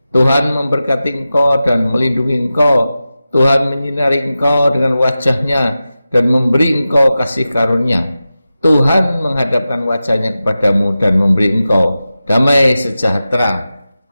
Tuhan memberkati engkau dan melindungi engkau. Tuhan menyinari engkau dengan wajah-Nya dan memberi engkau kasih karunia. Tuhan menghadapkan wajah-Nya kepadamu dan memberi engkau damai sejahtera.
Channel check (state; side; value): inverted; both; correlation -0.94